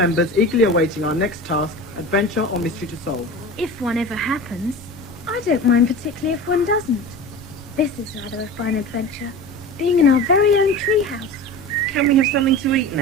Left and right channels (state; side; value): normal; both; correlation 0.32